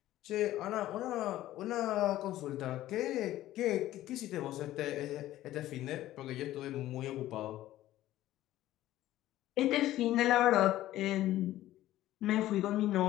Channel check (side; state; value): right; quieter; 14.5 dB